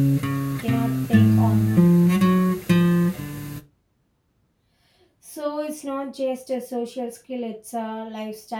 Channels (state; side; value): identical; both; correlation 1.00